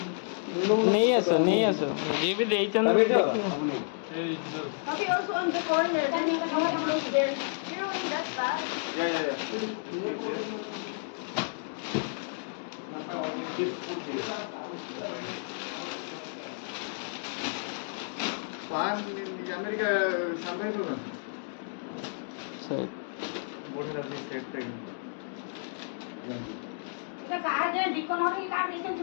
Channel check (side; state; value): right; silent; digital silence